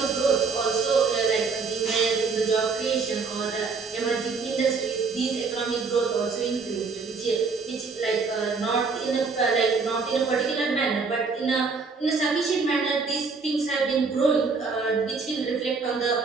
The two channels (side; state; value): left; quieter; 4.7 dB